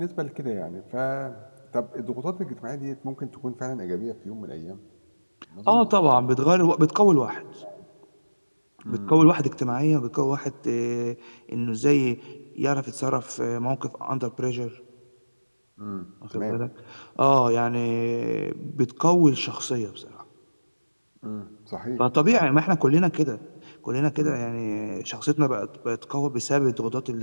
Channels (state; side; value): inverted; both; correlation -1.00